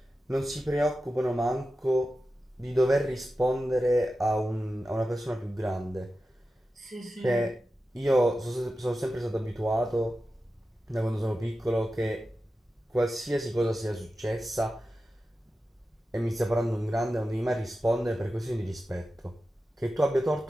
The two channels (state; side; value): normal; both; correlation 0.92